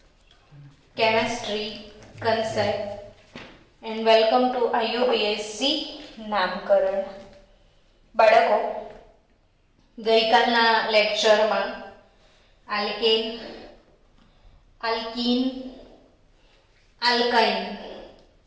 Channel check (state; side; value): identical; both; correlation 1.00